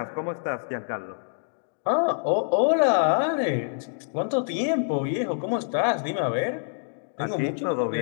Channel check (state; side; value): silent; right; digital silence